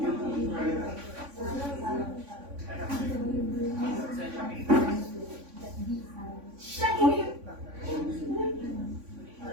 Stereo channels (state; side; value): late; left; 3.5 ms